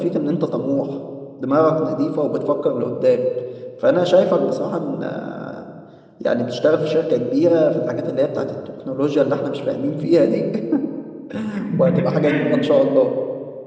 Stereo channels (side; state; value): both; identical; correlation 1.00